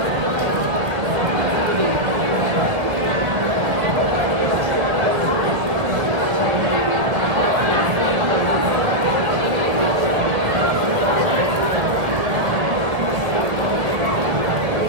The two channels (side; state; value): left; late; 2.0 ms